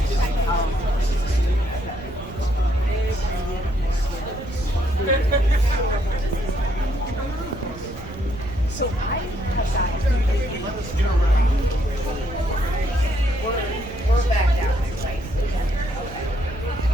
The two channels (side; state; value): right; noise; rumble, 14 dB below the sound